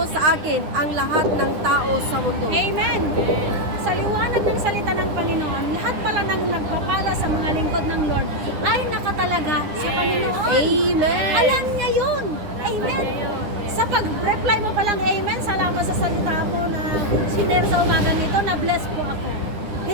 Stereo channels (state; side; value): late; left; 9.9 ms